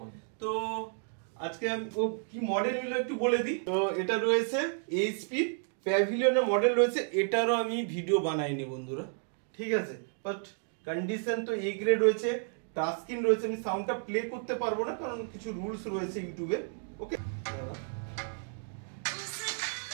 তো আজকে আমি ও কি মডেল নিল একটু বলে দিই। তো এটা রয়েছে এইচপি প্যাভিলিয়নের মডেল রয়েছে, এটারও আমি ভিডিও বানাইনি বন্ধুরা, ঠিক আছে। বাট কন্ডিশন তো এ গ্রেড রয়েছে, টাচ স্ক্রিন রয়েছে। আমি সাউন্ডটা প্লে করতে পারবো না কারণ কিছু রুলস রয়েছে ইউটিউবে। ওকে,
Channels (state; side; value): silent; left; 56 dB below the other